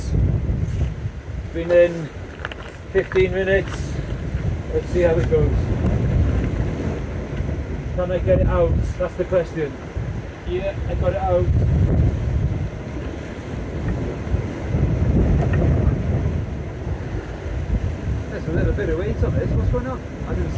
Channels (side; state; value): both; identical; correlation 1.00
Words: Been in 15 minutes. Let's see how it goes. Can I get it out? That's the question. Yeah, I got it out. There's a little bit of weight on this. What's going on? I didn't